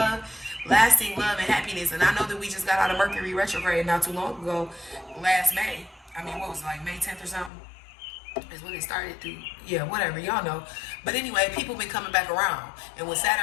and happiness. And I know that we just got out of Mercury retrograde not too long ago, last May. I mean, what was it, like May 10th or something? Is when it started to, yeah, whatever, y'all know. But anyway, people been coming back around. And with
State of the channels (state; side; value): drops out; right; at 7.5 s